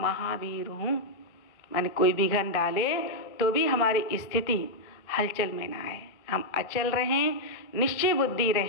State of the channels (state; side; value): late; right; 1.4 ms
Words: हूँ, मैंने कोई विघन डाले तो भी हमारी स्थिति हलचल में ना आए, हम अचल रहें, निश्चय बुद्धि